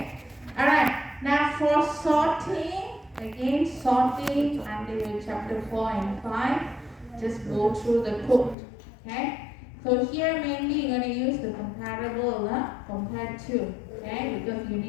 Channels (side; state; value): right; drops out; at 8.6 s